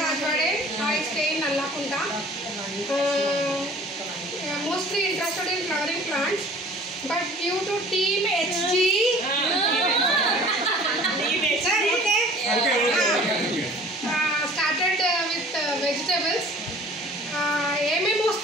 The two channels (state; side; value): normal; both; correlation 0.48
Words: Rajwade. I stay in Allakunta. Mostly interested in flowering plants, but due to Team HG, started with vegetables. ఏమేమి